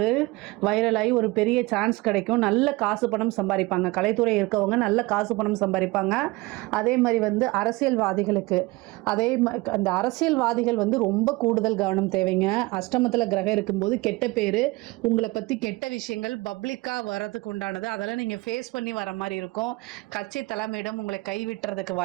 வைரலாகி ஒரு பெரிய சான்ஸ் கிடைக்கும். நல்ல காசு பணம் சம்பாதிப்பாங்க. கலைத்துறை இருக்கவங்க நல்ல காசு பணம் சம்பாதிப்பாங்க. அதே மாதிரி வந்து அரசியல்வாதிகளுக்கு அந்த அரசியல்வாதிகள் வந்து ரொம்ப கூடுதல் கவனம் தேவைங்க. அஷ்டமத்தில் கிரகம் இருக்கும்போது கெட்ட பேர், உங்களை பற்றி கெட்ட விஷயங்கள் பப்ளிக்காக வரதுக்கு உண்டானது, அதெல்லாம் நீங்கள் ஃபேஸ் பண்ணி வர மாதிரி இருக்கும். கட்சி தலைமையிடம் உங்களை கைவிட்டுறதுக்கு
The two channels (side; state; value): left; quieter; 22.7 dB